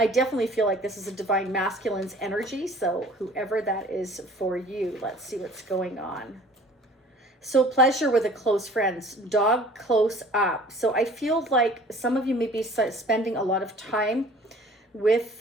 definitely feel like this is a Divine Masculine's energy, so whoever that is for you, let's see what's going on. So pleasure with a close friends, dog close up. So I feel like some of you may be spending a lot of time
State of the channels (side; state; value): both; normal; correlation 0.49